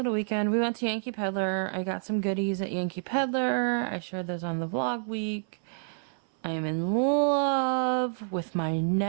weekend. We went to Yankee Pedlar. I got some goodies at Yankee Pedlar. I shared those on the vlog week. I am in love with my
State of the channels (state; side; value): silent; left; 59 dB below the other